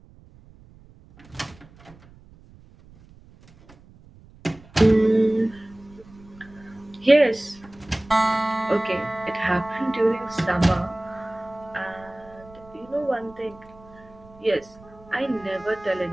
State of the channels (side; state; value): right; noise; rumble, 24 dB below the sound